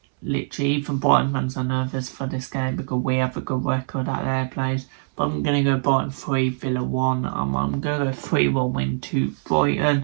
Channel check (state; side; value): silent; left; digital silence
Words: literally, even Brighton fans are nervous for this game because we have a good record at their place. But I'm going to go Brighton 3, Villa 1. I'm going to go 3-1 win to